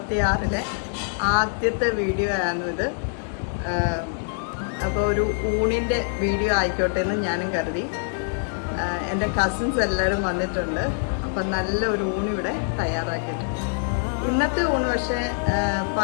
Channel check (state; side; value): silent; right; digital silence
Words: ആദ്യത്തെ വീഡിയോ ആയിരുന്നു ഇത്. അപ്പോൾ ഒരു ഊണിൻ്റെ വീഡിയോ ആയിക്കോട്ടെ എന്ന് ഞാനും കരുതി. എൻ്റെ കസിൻസ് എല്ലാവരും വന്നിട്ടുണ്ട്. അപ്പം നല്ല ഒരു ഊണിവിടെ തയ്യാറാക്കിയിട്ടുണ്ട്. ഇന്നത്തെ ഊണ് പക്ഷേ